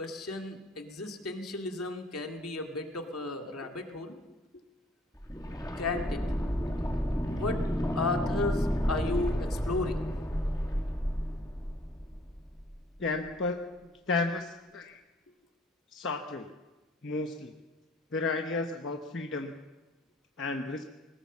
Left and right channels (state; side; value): normal; both; correlation 0.59